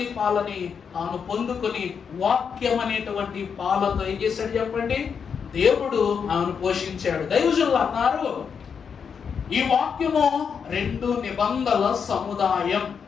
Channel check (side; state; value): right; quieter; 6.6 dB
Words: పాలని తాను పొందుకొని వాక్యం అనేటువంటి పాలతో ఏం చేశాడు చెప్పండి? దేవుడు ఆమెను పోషించాడు. దైవజనులు అన్నారు, ఈ వాక్యము 2 నిబంధనల సముదాయం.